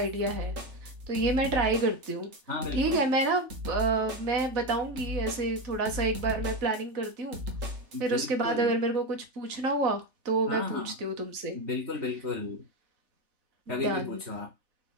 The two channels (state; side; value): late; left; 3.4 ms